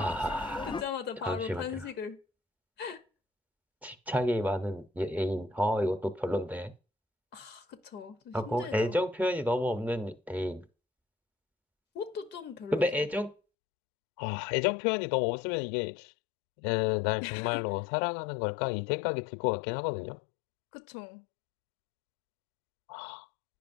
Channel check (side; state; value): right; drops out; at 13.4 s